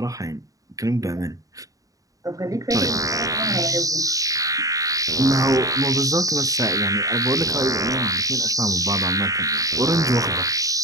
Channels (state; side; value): late; left; 0.17 ms